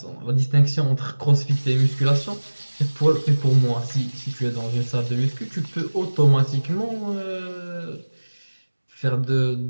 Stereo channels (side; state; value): both; inverted; correlation -1.00